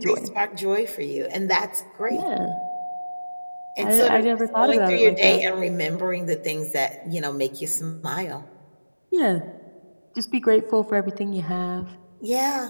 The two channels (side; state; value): both; inverted; correlation -1.00